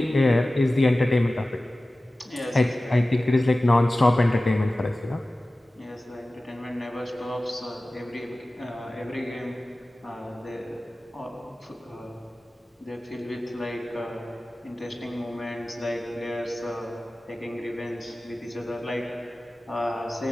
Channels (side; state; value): both; normal; correlation 0.96